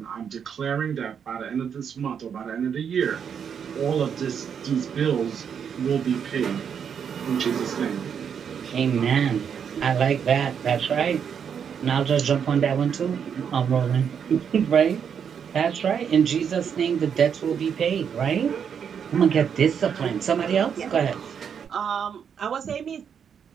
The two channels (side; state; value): left; quieter; 7.5 dB